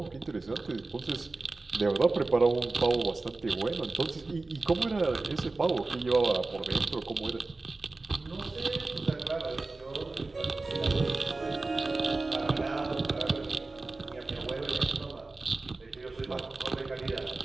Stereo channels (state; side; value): quieter; left; 3.4 dB